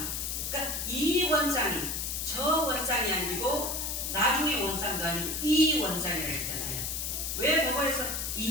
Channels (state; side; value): noise; left; hiss, 2 dB below the sound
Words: 그러니까 이 원상이 저 원상이 아니고 나중에 원상도 아니고 이 원상이라고 했잖아요. 왜 법어에서